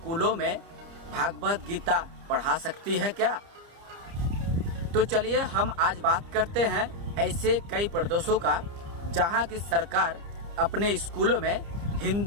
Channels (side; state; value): left; late; 30 ms